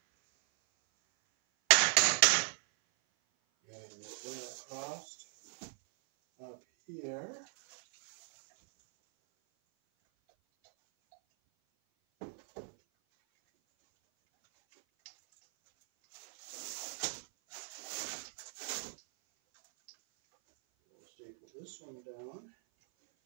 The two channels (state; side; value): silent; left; 54 dB below the other